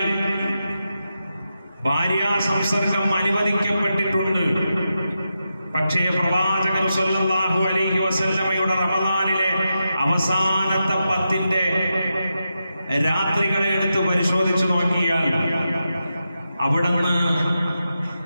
ഭാര്യാ സംസർഗം അനുവദിക്കപ്പെട്ടിട്ടുണ്ട്. പക്ഷേ പ്രവാചകർ സ്വല്ലല്ലാഹു അലൈഹി വസല്ലമയുടെ റമദാനിലെ അവസാനത്തെ 10ന്റെ രാത്രികളെ എടുത്ത് പരിശോധിച്ചു നോക്കിയാൽ അവിടുന്ന്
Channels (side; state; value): both; inverted; correlation -0.88